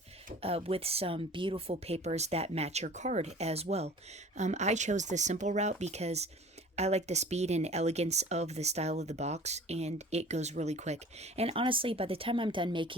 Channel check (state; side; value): normal; both; correlation 0.44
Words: with some beautiful papers that match your card as well. I chose the simple route because I like the speed and elegance of the style of the box, and it goes really quick. And honestly, by the time I'm done